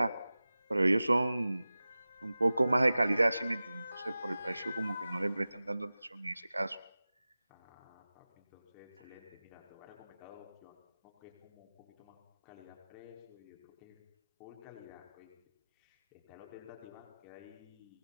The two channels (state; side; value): inverted; both; correlation -0.97